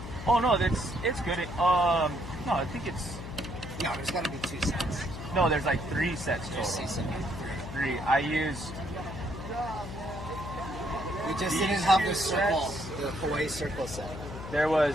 Oh no, it's good. No, I think it's. No, there's got to be 2 sets. No, there's like 3 sets total. 3. I used. We just didn't have the circle, the Hawaii circle set. There was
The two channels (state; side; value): noise; left; hum, 10 dB below the sound